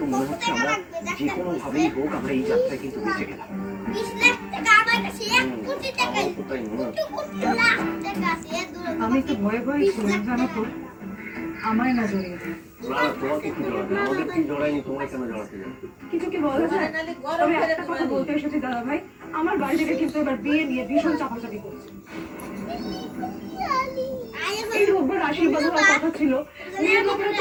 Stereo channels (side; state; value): both; identical; correlation 1.00